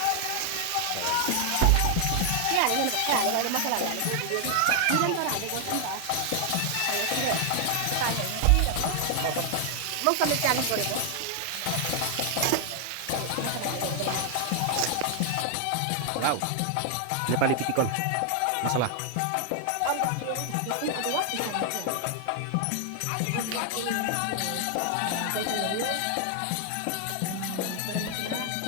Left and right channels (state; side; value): different; both; correlation 0.00